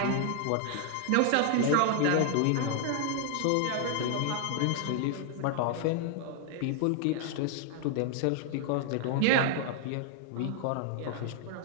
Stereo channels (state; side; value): different; both; correlation 0.00